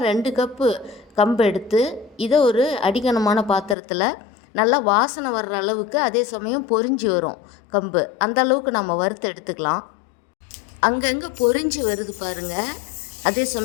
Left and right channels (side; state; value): right; drops out; at 3.8 s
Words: 2 கப்பு கம்பு எடுத்து இதை ஒரு அடிகனமான பாத்திரத்தில் நல்லா வாசனை வர்ற அளவுக்கு, அதே சமயம் பொரிஞ்சு வரும் கம்பு, அந்த அளவுக்கு நம்ம வறுத்து எடுத்துக்கலாம். அங்கங்கே பொரிஞ்சு வருது பாருங்கள், அதே